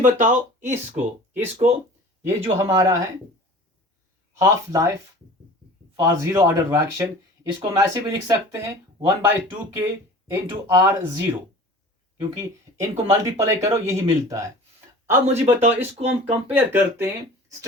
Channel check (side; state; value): both; normal; correlation 0.42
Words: बताओ इसको ये जो हमारा है half life for zero order reaction, इसको हम ऐसे भी लिख सकते हैं 1/2k इंटू R0, क्योंकि इनको मल्टीप्लाई करो यही मिलता है. अब मुझे बताओ इसको हम कंपेयर करते हैं